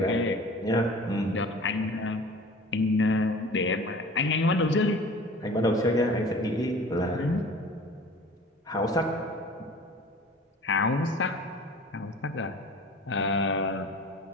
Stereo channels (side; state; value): both; normal; correlation 0.43